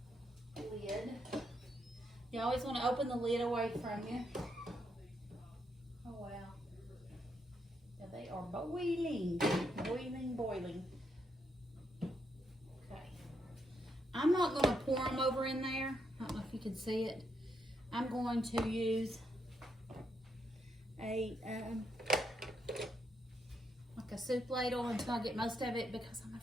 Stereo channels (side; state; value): both; normal; correlation 0.78